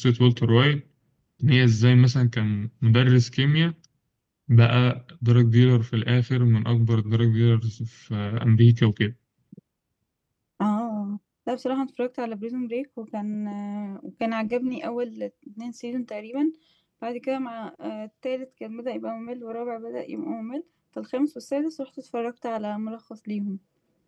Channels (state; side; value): identical; both; correlation 1.00